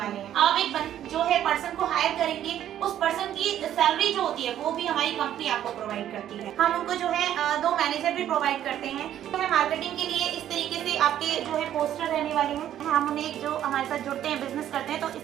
हैं। आप एक जो है पर्सन को हायर करेंगे, उस पर्सन की सैलरी जो होती है वो भी हमारी कंपनी आपको प्रोवाइड करती है। हम उनको जो है 2 मैनेजर भी प्रोवाइड करते हैं। तो है मार्केटिंग के लिए इस तरीके से आपके जो है पोस्टर रहने वाले हैं। हम उन्हें जो हमारे साथ जुड़ते हैं, बिजनेस करते हैं, तो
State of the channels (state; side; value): quieter; left; 11.2 dB